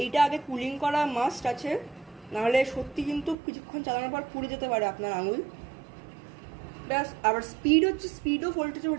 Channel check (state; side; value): drops out; left; at 3.4 s